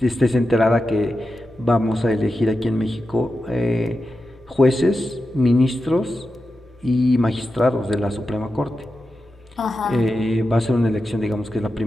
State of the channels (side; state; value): both; normal; correlation 0.90